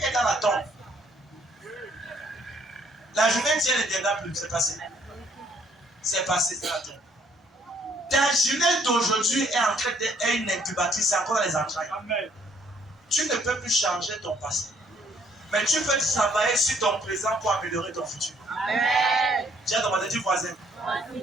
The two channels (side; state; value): both; normal; correlation 0.65